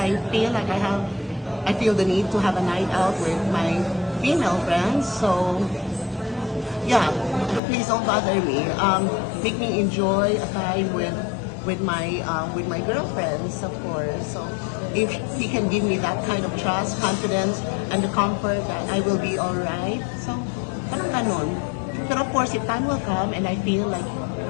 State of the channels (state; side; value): drops out; right; at 7.6 s